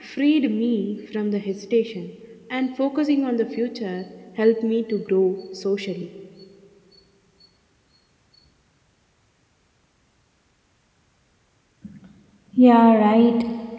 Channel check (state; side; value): identical; both; correlation 1.00